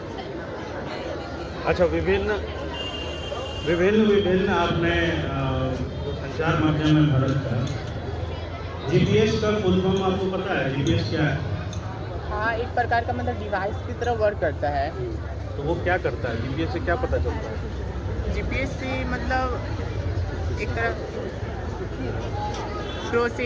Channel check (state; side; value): identical; both; correlation 1.00